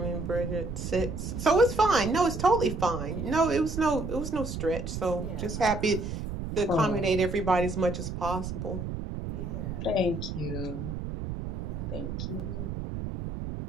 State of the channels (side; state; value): right; noise; rumble, 5 dB below the sound